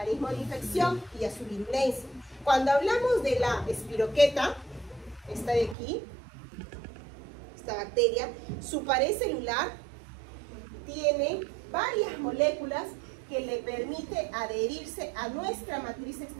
de infección y a su virulencia. Cuando hablamos de la espiroqueta, esta de aquí, esta bacteria, su pared celular tiene varias moléculas que le permite adherirse a nuestra matriz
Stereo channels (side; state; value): left; drops out; at 5.8 s